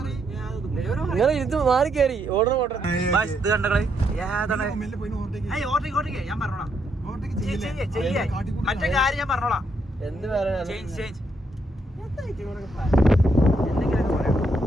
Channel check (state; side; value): normal; both; correlation 0.76